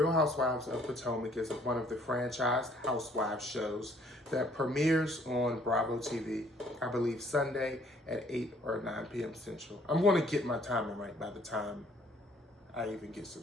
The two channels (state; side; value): normal; both; correlation 0.61